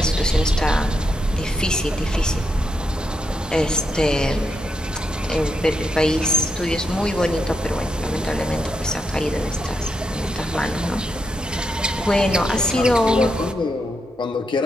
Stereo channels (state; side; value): normal; both; correlation 0.82